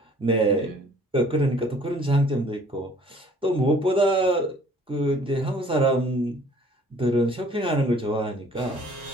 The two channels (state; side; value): normal; both; correlation 0.55